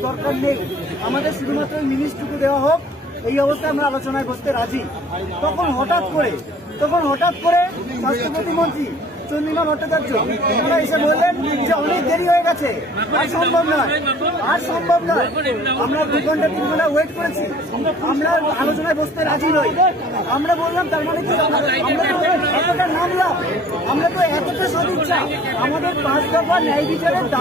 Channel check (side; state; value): both; normal; correlation 0.52